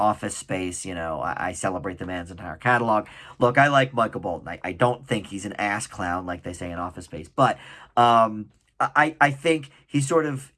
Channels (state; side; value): identical; both; correlation 1.00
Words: Space, I celebrate the man's entire catalog. Look, I like Michael Bolton. I don't think he's an ass clown like they say in Office Space, but I think he sort of